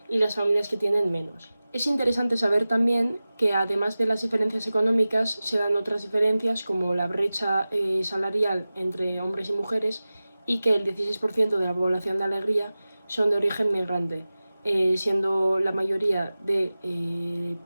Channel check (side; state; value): both; inverted; correlation -0.96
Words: y las familias que tienen menos. Es interesante saber también que además de las diferencias económicas se dan otras diferencias como la brecha salarial entre hombres y mujeres y que el 16% de la población de Alegría son de origen migrante, siendo la mayoría de